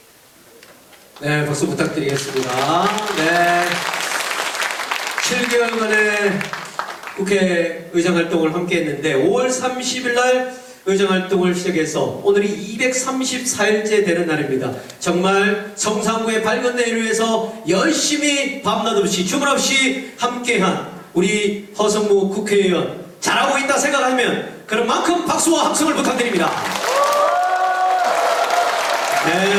네, 박수 부탁드리겠습니다. 네. 7개월 만에 국회 의정 활동을 함께 했는데 5월 30일 날 의정 활동을 시작해서 오늘이 234일째 되는 날입니다. 정말 성산구의 밝은 내일을 위해서 열심히 밤낮 없이 주말 없이 함께한 우리 허성무 국회의원 잘하고 있다 생각하면 그런 만큼 박수와 함성을 부탁드립니다.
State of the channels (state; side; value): identical; both; correlation 1.00